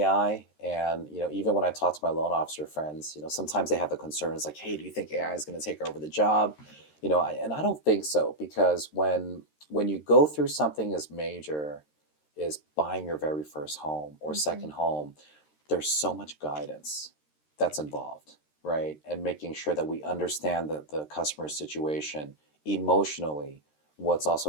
and even when I talk to my loan officer friends, sometimes they have the concerns like, "Hey, do you think AI is going to take over the job?" And I don't think so because when you go through something as major as buying your very first home or Hmm. second home, there's so much guidance that's involved, right? And making sure that we understand the customer's situation emotionally, what's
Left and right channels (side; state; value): right; late; 13 ms